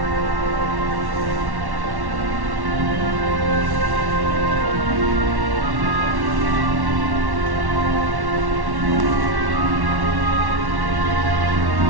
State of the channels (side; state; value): left; late; 1.1 ms